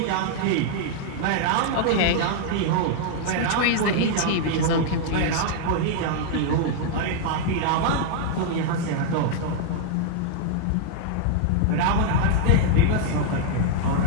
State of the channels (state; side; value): different; both; correlation -0.01